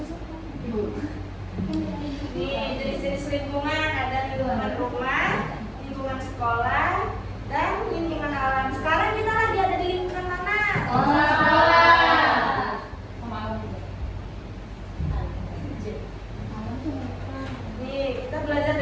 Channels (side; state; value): both; identical; correlation 1.00